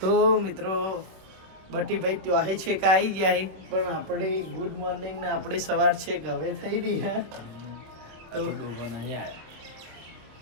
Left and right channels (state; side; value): late; left; 26 ms